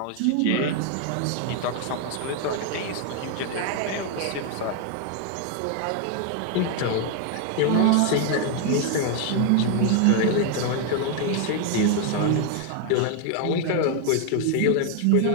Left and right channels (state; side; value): different; both; correlation 0.01